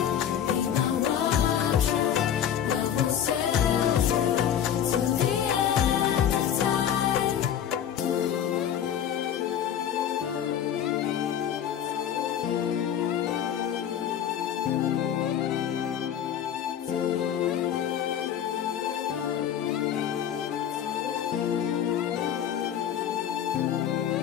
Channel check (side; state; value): right; quieter; 9.5 dB